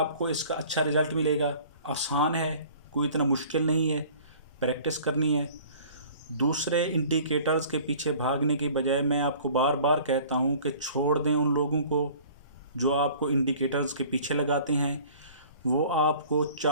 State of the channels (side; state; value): both; inverted; correlation -0.48